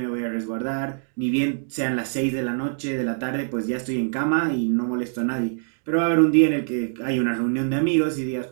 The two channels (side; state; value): left; silent; digital silence